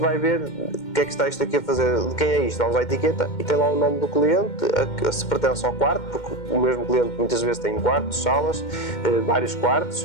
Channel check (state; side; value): late; right; 2.1 ms